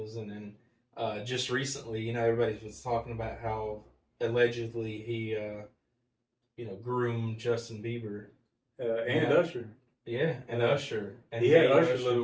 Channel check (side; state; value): both; identical; correlation 1.00